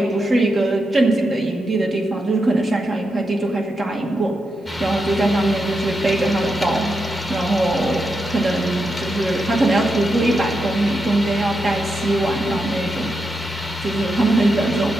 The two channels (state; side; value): normal; both; correlation 0.85